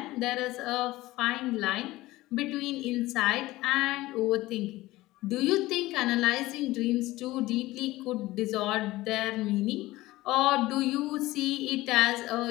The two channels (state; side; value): quieter; right; 18.1 dB